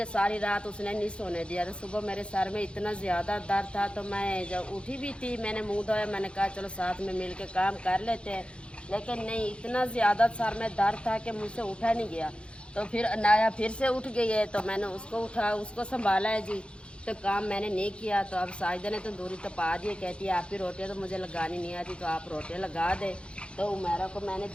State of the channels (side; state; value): right; late; 0.058 ms